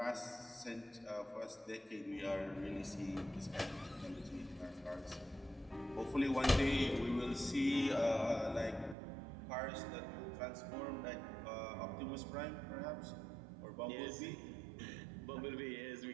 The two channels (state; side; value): drops out; left; at 9.0 s